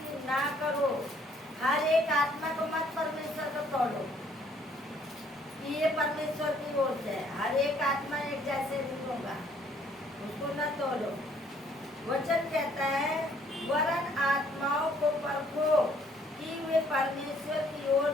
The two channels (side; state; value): both; normal; correlation 0.63